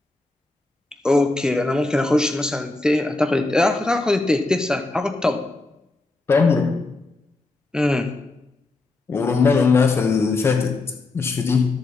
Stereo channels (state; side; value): quieter; right; 3.2 dB